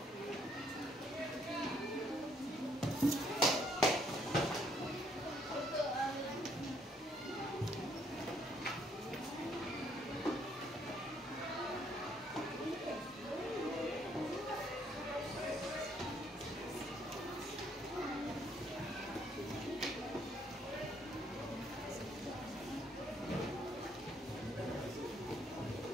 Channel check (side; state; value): both; normal; correlation 0.68